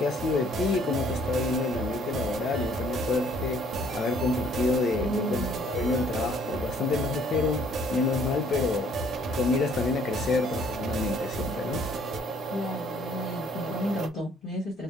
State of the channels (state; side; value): normal; both; correlation 0.61